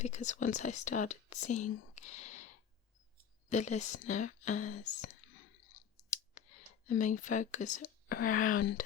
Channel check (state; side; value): quieter; right; 8.2 dB